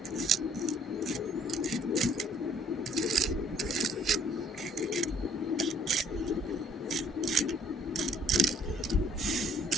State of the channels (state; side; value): normal; both; correlation 0.60